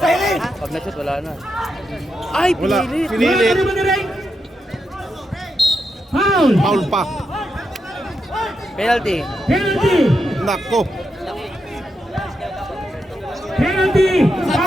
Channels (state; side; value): normal; both; correlation 0.85